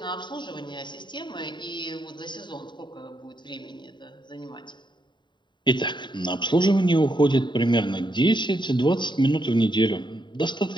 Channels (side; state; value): right; late; 0.22 ms